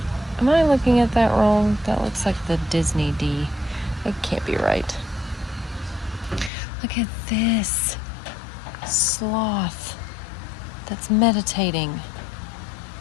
I looking at that wrong? That looks like the Disney D. It can't be right. Look at this sloth that's meditating.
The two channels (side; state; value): right; drops out; at 6.5 s